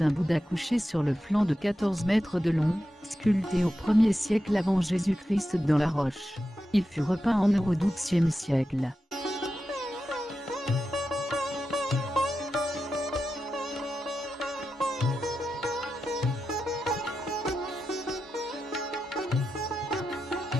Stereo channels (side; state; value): both; normal; correlation 0.90